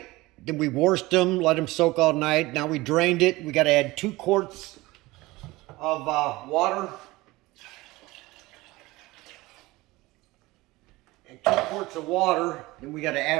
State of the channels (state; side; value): quieter; left; 20.4 dB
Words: Then we washed them, let them soak all night. Now we drained it. We got to add 2 quarts of water. And 2 quarts of water. Then we got to